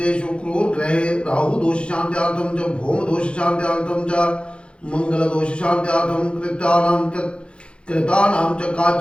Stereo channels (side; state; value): right; late; 0.057 ms